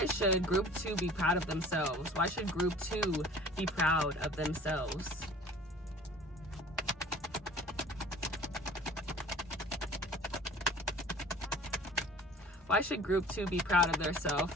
should group two be proud of themselves? Why should group two be proud of themselves? Why should group two be proud of themselves?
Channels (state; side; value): normal; both; correlation 0.46